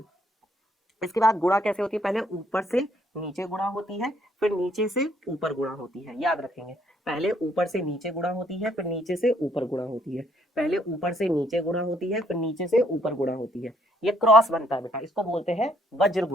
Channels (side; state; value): both; normal; correlation 0.68